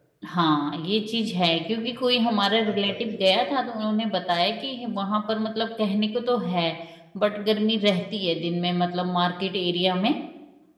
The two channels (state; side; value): identical; both; correlation 1.00